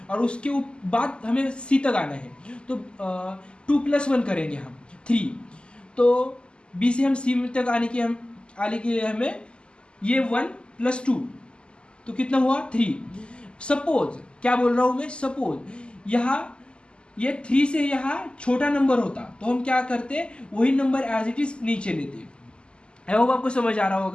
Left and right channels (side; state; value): right; late; 0.051 ms